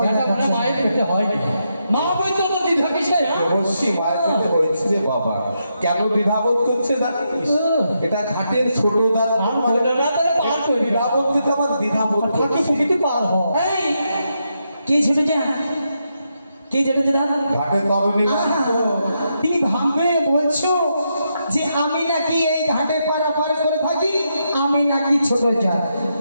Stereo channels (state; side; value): inverted; both; correlation -0.82